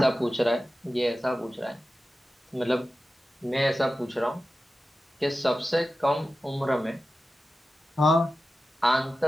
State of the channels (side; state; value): both; normal; correlation 0.94